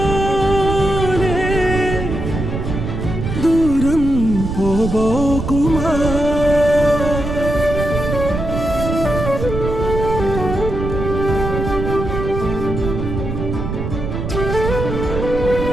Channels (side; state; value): right; noise; rumble, 4 dB below the sound